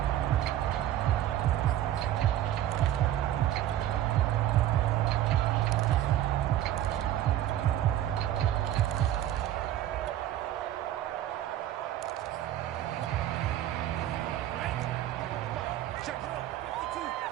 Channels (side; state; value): left; quieter; 12.4 dB